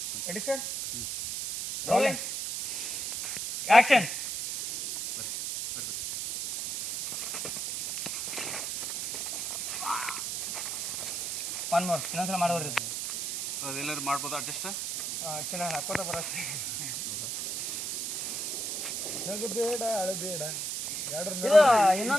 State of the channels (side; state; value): right; noise; hiss, 3 dB below the sound